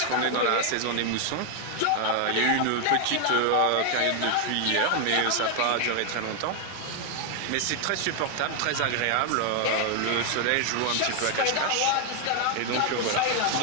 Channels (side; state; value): both; different; correlation 0.00